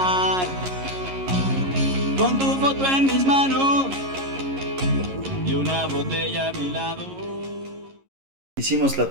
con tu foto en mis manos y una botella a mi lado. Hicimos la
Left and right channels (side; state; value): left; late; 11 ms